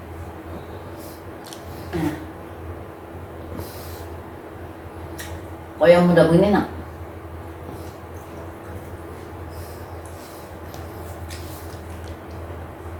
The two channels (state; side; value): identical; both; correlation 1.00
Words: Nah. Kalau yang muda begini enak.